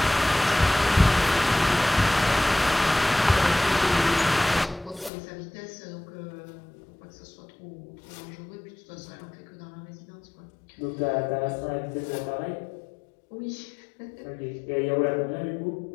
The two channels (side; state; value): right; drops out; at 5.1 s